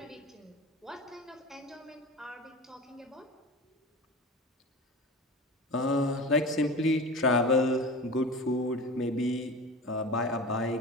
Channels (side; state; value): both; normal; correlation 0.32